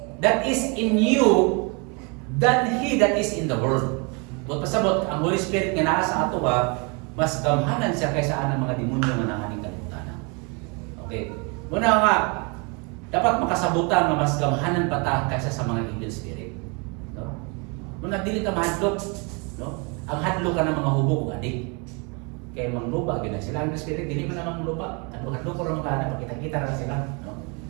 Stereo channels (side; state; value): left; quieter; 32.1 dB